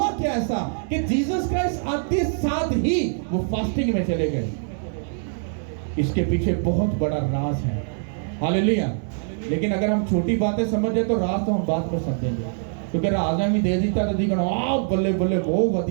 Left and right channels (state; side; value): silent; left; digital silence